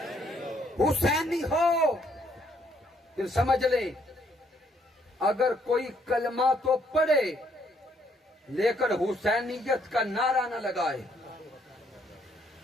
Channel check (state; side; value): normal; both; correlation 0.69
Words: حسینی ہو۔ پھر سمجھ لیں، اگر کوئی کلمہ تو پڑھے لیکن حسینیت کا نعرہ نہ لگائے،